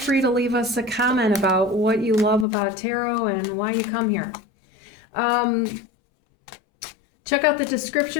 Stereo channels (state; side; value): drops out; right; at 2.5 s